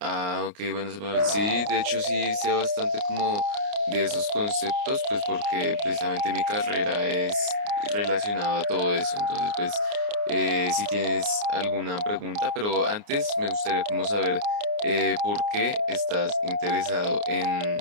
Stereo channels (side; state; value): left; late; 29 ms